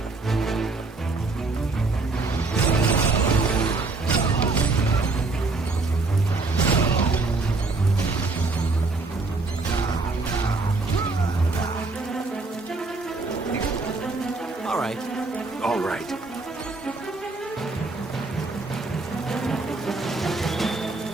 All right. All right.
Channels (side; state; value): left; quieter; 3.6 dB